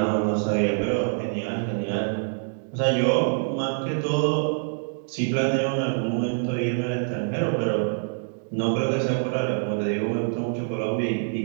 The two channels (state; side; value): silent; left; digital silence